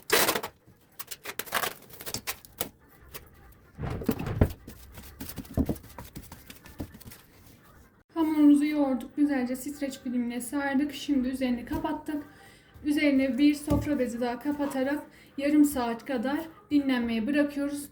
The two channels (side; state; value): both; identical; correlation 1.00